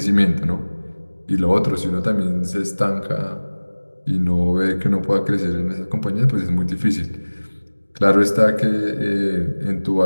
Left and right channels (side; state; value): both; inverted; correlation -1.00